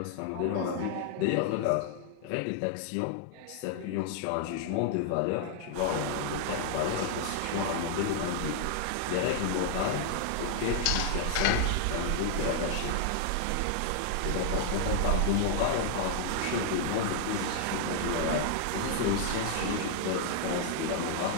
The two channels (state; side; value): different; both; correlation -0.01